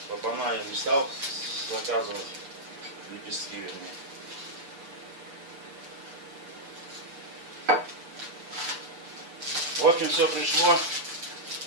Клапана я не стал заказывать. Лепестки, вернее. В общем, все пришло.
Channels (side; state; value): left; late; 7.0 ms